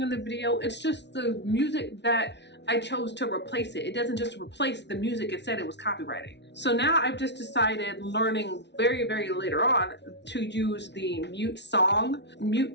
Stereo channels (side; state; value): right; late; 0.50 ms